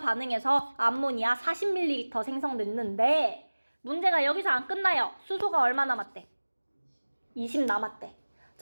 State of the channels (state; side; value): inverted; both; correlation -1.00